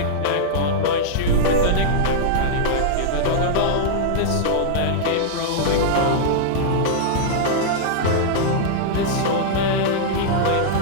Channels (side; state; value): both; different; correlation -0.02